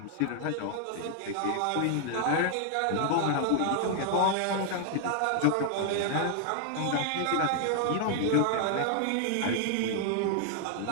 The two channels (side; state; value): both; different; correlation 0.00